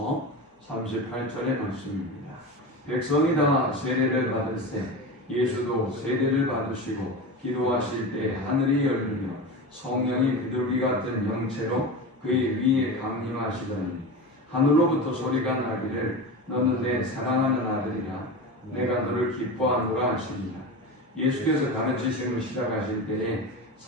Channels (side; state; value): both; normal; correlation 0.26